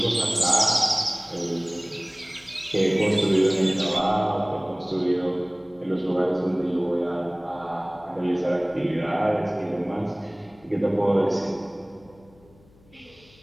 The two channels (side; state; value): left; noise; hum, 28 dB below the sound